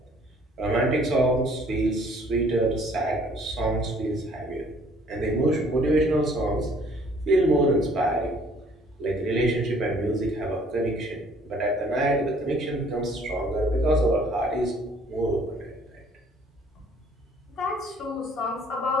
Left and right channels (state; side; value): normal; both; correlation 0.59